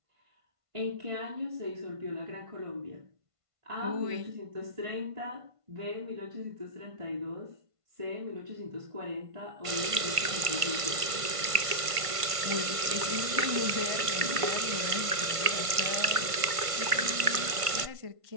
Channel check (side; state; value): left; late; 1.5 ms